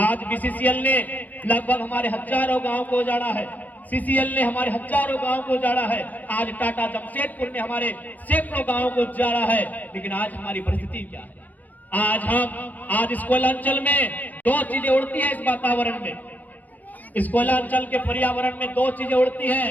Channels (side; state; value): right; late; 0.081 ms